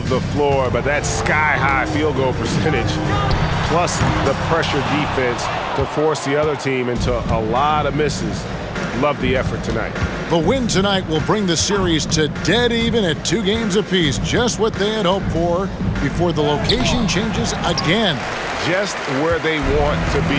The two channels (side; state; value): both; identical; correlation 1.00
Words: the floor, but that sky-high field goal percentage plus the pressure defense to force the other team into a lot of misses. Love the effort tonight. The win tonight will bring the series to dead even at 2 games apiece, just what they had hoped for before the location changes again. Just where they want to